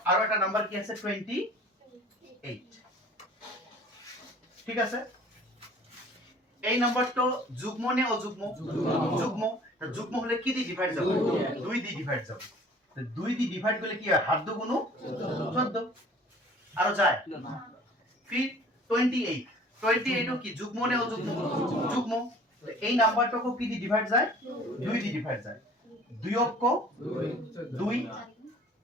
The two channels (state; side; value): normal; both; correlation 0.49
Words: আৰু এটা নাম্বার কি আছে 28 ঠিক আছে এই নাম্বারটো যুগ্ম নে অযুগ্ম যুগ্ম তা যুগ্ম হলে কি দি ডিভাইড যাব 2 দি ডিভাইড যাব তো 2 দি ডিভাইড করলে কি হয় হাত দু গুণ 14 আর যায় ফির 28 ও কি যুগ্ম নে অযুগ্ম যুগ্ম এই নাম্বারটাকে কি দি ডিভাইড যায় 2 দি ডিভাইড যায় 2 অক্ষ 2